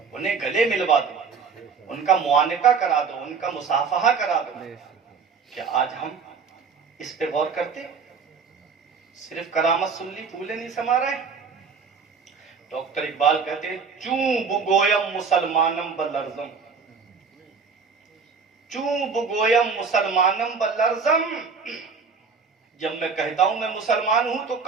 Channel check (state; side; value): quieter; left; 5.5 dB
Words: انہیں گلے ملوا دو, ان کا معانقہ کرا دو, ان کا مصافحہ کرا دو. کیا آج ہم اس پہ غور کرتے؟ صرف کرامت سن لی, پھولے نہیں سما رہے. ڈاکٹر اقبال کہتے ہیں چوں بگویم مسلمانم بلرزم, چوں بگویم مسلمانم بلرزم, جب میں کہتا ہوں میں مسلمان ہوں تو